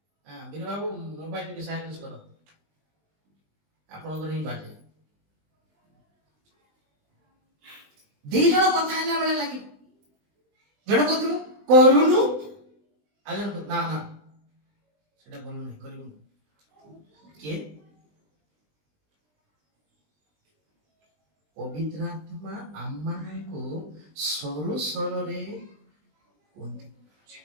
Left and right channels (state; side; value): late; left; 20 ms